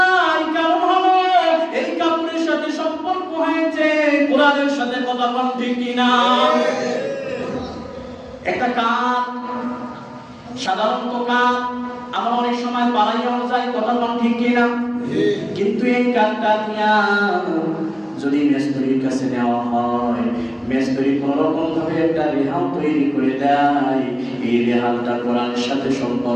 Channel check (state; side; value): identical; both; correlation 1.00